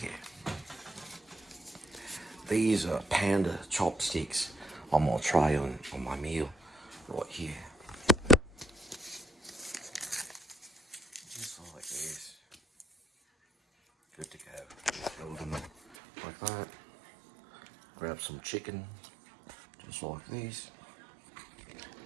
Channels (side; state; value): left; drops out; at 16.0 s